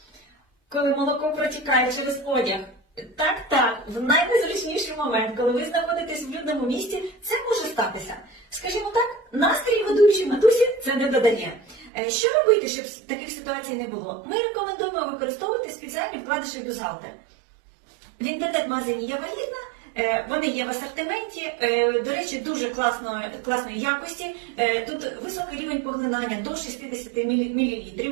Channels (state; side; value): drops out; left; at 11.9 s